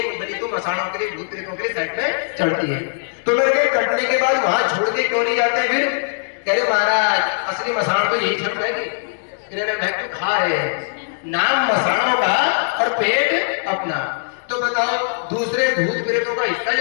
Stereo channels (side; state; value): right; silent; digital silence